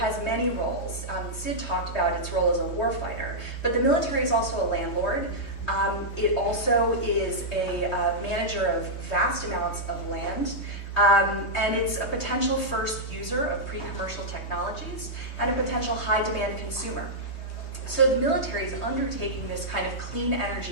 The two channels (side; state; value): right; late; 3.2 ms